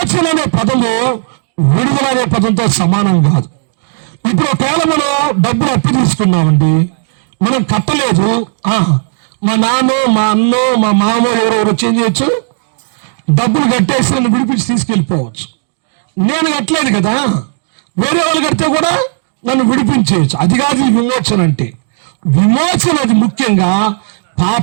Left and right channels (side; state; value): left; silent; digital silence